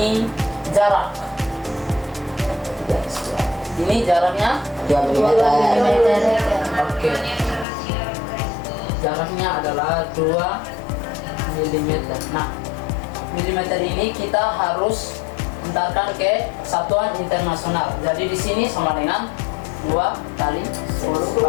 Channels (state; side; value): drops out; right; at 7.7 s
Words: jarak. Ini jaraknya 2 mm. oke. Jaraknya adalah 2 mm. Nah, milimeter ini kita harus entarkan ke satuan internasional. Jadi di sini sama dengan 2 kali